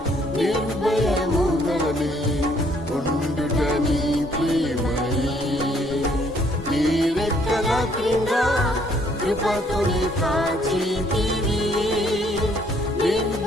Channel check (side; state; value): both; normal; correlation 0.65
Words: నిర్భయముగానే ఉండుట నీ ప్రేమయే. నీ రెక్కల క్రింద కృపతోనే కాచితివి,